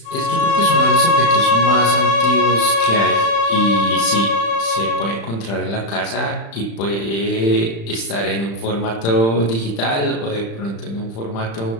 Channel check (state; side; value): late; right; 35 ms